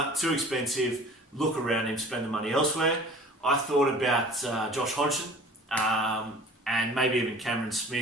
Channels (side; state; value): both; normal; correlation 0.45